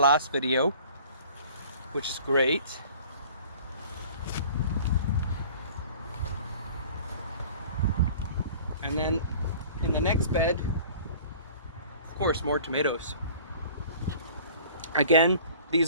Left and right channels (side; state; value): both; inverted; correlation -0.47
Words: video, which is great. And then in the next bed, of course, more tomatoes. Again,